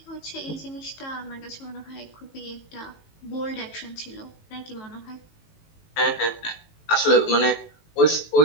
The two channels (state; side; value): late; right; 18 ms